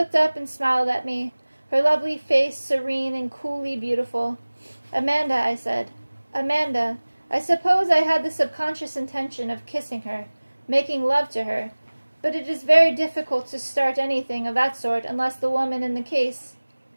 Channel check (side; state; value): both; inverted; correlation -1.00